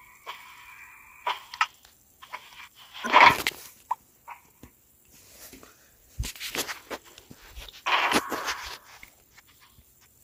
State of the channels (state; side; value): identical; both; correlation 1.00